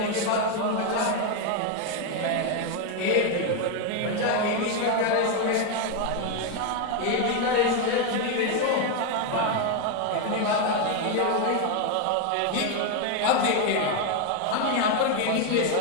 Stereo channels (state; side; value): different; both; correlation 0.02